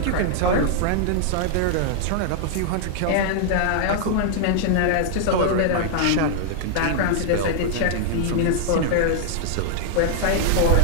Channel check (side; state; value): both; different; correlation -0.01